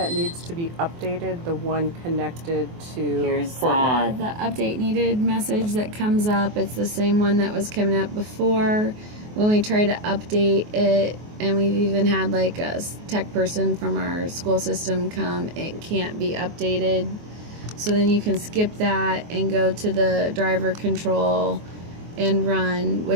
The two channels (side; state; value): left; late; 24 ms